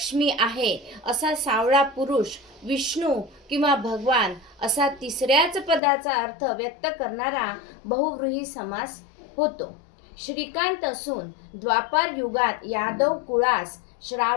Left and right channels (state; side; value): drops out; right; at 5.8 s